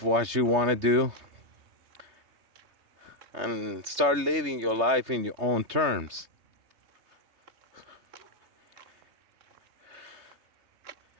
what you want to do, and start living your life in your own terms.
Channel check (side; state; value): left; late; 3.2 ms